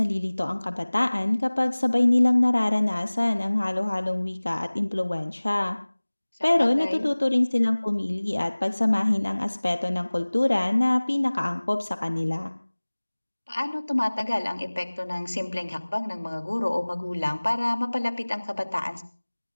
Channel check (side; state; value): both; inverted; correlation -1.00